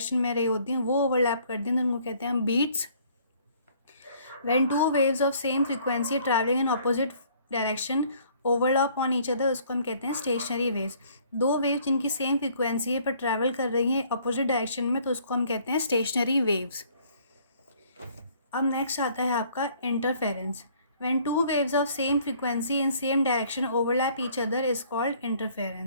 में रही होती हैं वो ओवरलैप करती हैं तो उनको कहते हैं हम beats. When two waves of same frequency travelling in opposite direction overlap on each other, उसको हम कहते हैं स्टेशनरी वेव्स। दो वेव्स जिनकी सेम फ्रीक्वेंसी है पर ट्रैवल कर रही हैं अपोजिट डायरेक्शन में तो उसको हम कहते हैं स्टेशनरी वेव्स। अब नेक्स्ट आता है आपका interference. When two waves of same frequency in same direction overlap each other is called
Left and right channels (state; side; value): inverted; both; correlation -0.59